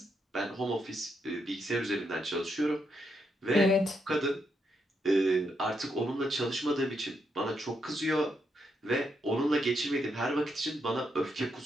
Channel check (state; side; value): normal; both; correlation 0.80